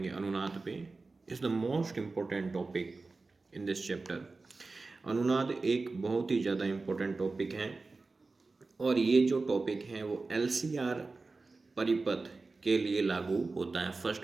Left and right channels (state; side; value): quieter; left; 3.7 dB